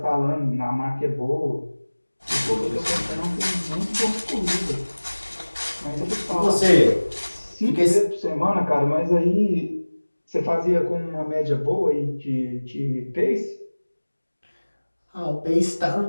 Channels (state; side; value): inverted; both; correlation -1.00